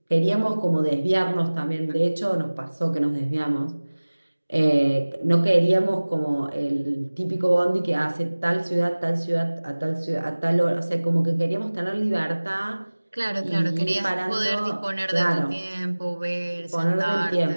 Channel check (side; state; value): both; inverted; correlation -1.00